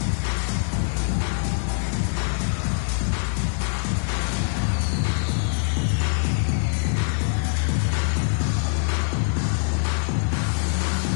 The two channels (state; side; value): silent; right; 63 dB below the other